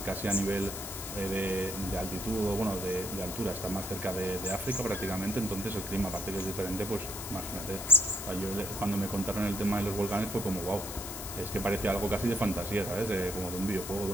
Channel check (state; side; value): noise; left; hiss, 8 dB below the sound